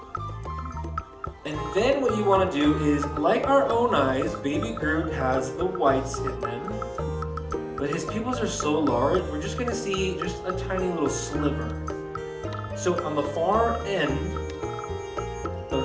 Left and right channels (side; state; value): both; identical; correlation 1.00